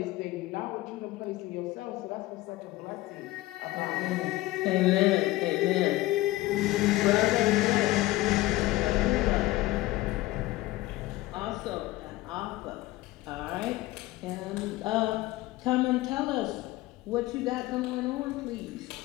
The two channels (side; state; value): right; quieter; 18.1 dB